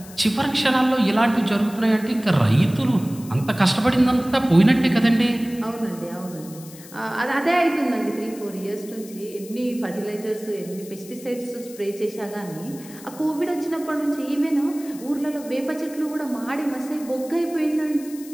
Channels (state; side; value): noise; left; hiss, 18 dB below the sound